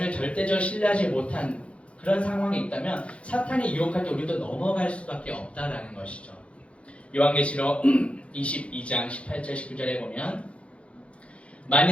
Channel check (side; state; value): right; late; 0.062 ms